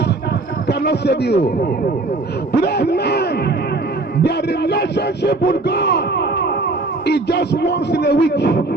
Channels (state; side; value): quieter; left; 3.1 dB